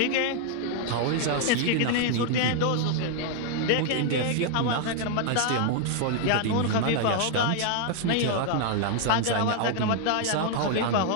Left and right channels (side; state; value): both; different; correlation 0.00